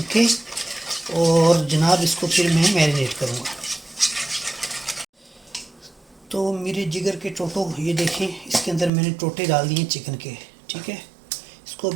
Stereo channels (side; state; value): left; drops out; at 8.9 s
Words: ओके, और जनाब इसको फिर मैं मैरिनेट करूँगा। तो मेरे जिगर के टोटो, ये देखें इसके अंदर मैंने टोटे डाल दिए चिकन के, ठीक है। इसको